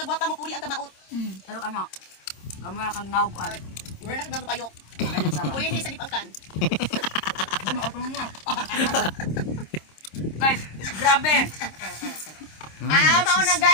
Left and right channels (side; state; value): right; late; 26 ms